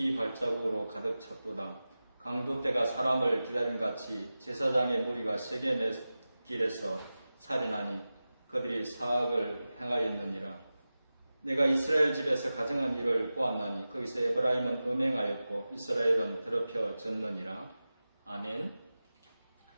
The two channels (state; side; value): inverted; both; correlation -0.95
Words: 발자국으로 가득 찼도다. 강도 때가 사람을 기다림같이 제사장의 무리가 세겜의 길에서 살인하니 그들이 사악을 행하였느니라. 내가 이스라엘 집에서 가정한 일을 보았나니 거기서 에브라임은 음행하였고 이스라엘은 더럽혀졌느니라. 아멘.